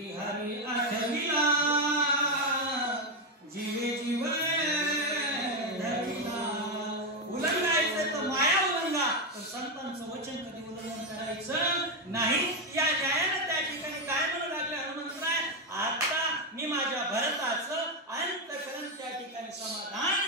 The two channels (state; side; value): normal; both; correlation 0.07